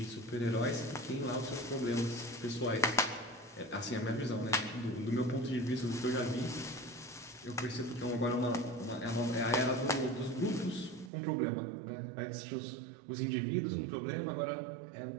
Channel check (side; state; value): left; drops out; at 11.1 s